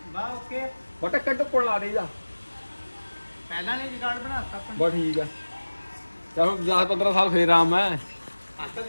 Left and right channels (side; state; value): both; inverted; correlation -1.00